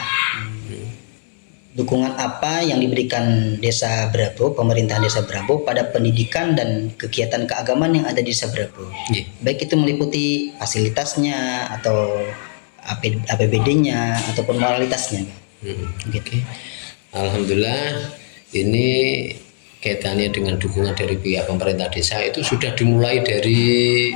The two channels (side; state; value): right; silent; digital silence